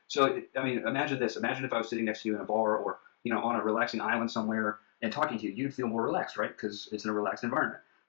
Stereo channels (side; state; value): right; silent; 55 dB below the other